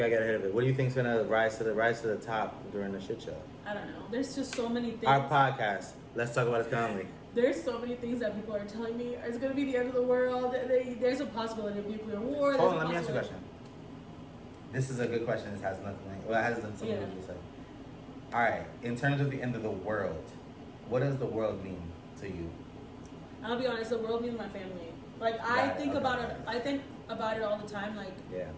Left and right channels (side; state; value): both; identical; correlation 1.00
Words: do you think's gonna rise to the top during the shit show? I don't know. There's just so many things. Our podcast. Let's talk about it calmly. There's so many things that people are telling me it's gonna be the end of the world. There's a possibility of nuclear war. Hold on, let me ask you a question. This is a good question. This has nothing. Well, it has something to do with it. All right. In terms of the end of the world, what does the world mean to you? I'll be honest. The world means my family. Like I think about it. I think about it all the time. Like